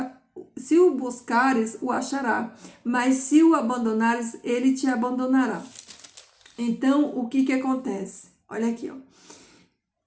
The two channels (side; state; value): both; identical; correlation 1.00